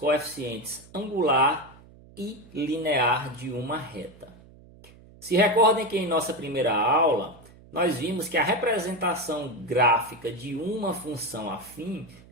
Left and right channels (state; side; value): noise; right; hum, 23 dB below the sound